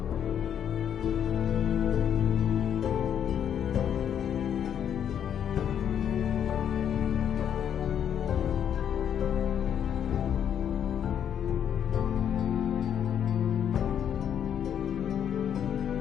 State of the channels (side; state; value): right; quieter; 9.0 dB